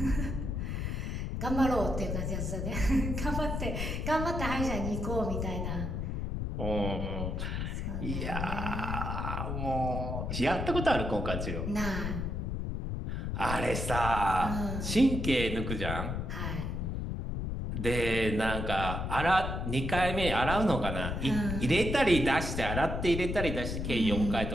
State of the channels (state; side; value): noise; left; rumble, 2 dB below the sound